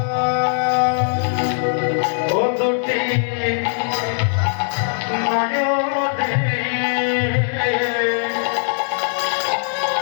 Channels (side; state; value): right; silent; digital silence